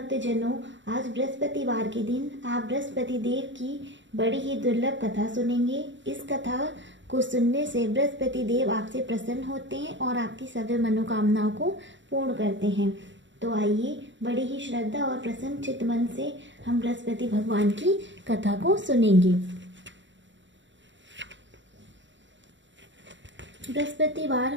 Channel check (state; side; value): late; left; 0.54 ms